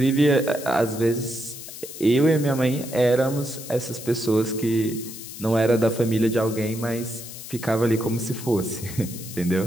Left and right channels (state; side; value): noise; left; hiss, 12 dB below the sound